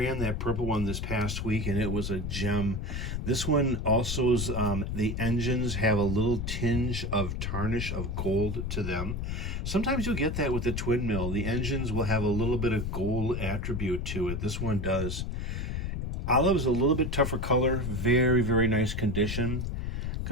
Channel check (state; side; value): noise; left; rumble, 2 dB below the sound